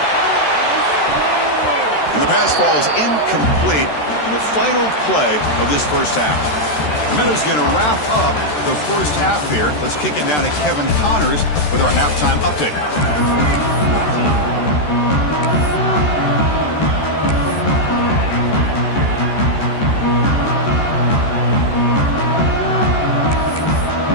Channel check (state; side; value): late; right; 13 ms